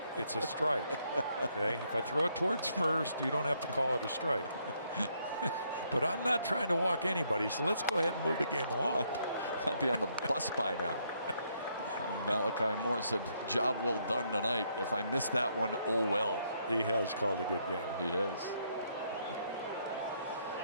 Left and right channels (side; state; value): both; inverted; correlation -0.73